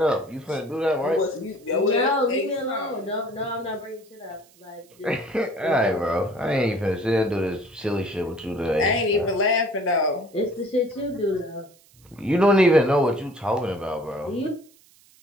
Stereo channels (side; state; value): right; noise; hiss, 29 dB below the sound